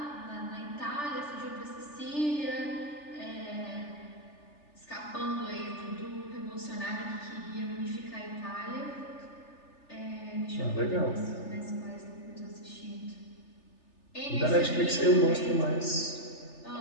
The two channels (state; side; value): late; right; 3.4 ms